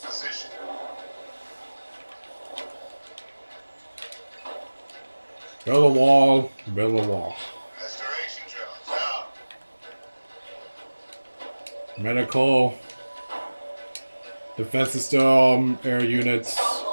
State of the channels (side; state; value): both; inverted; correlation -1.00